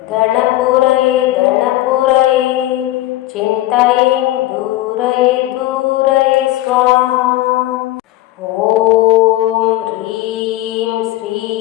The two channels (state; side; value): quieter; right; 15.9 dB